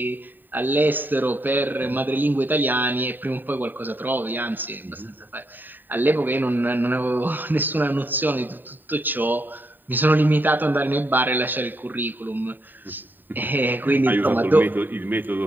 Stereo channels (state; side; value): late; left; 0.091 ms